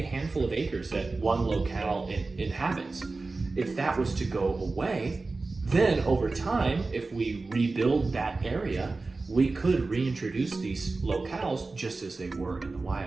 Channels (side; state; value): left; quieter; 3.6 dB